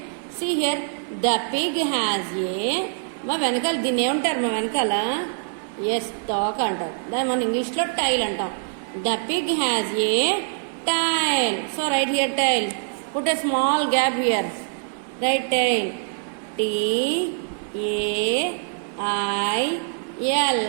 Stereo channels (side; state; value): left; silent; 58 dB below the other